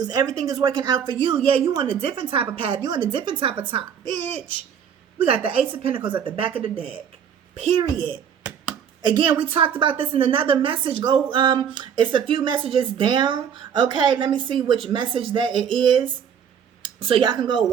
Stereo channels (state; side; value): quieter; left; 8.0 dB